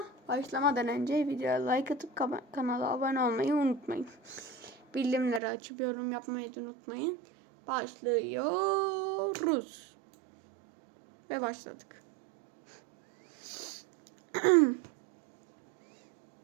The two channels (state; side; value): drops out; left; at 5.4 s